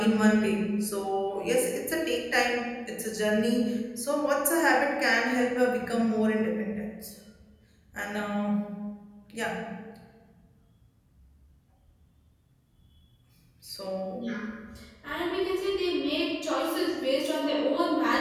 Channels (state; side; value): identical; both; correlation 1.00